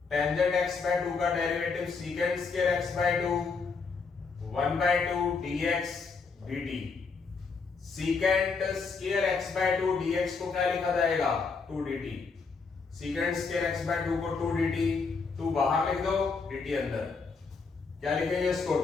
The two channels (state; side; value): quieter; right; 4.8 dB